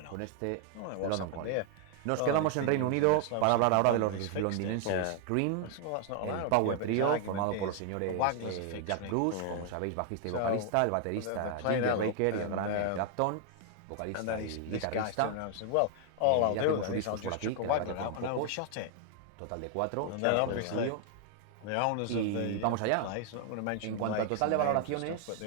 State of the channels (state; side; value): different; both; correlation 0.00